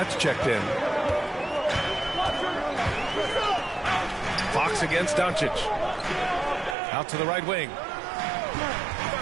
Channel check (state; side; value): drops out; left; at 6.8 s